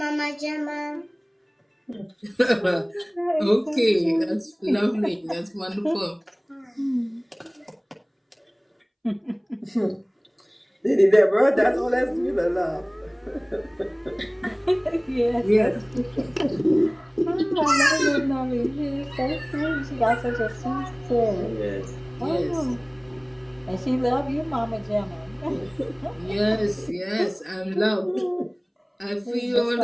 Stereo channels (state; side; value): identical; both; correlation 1.00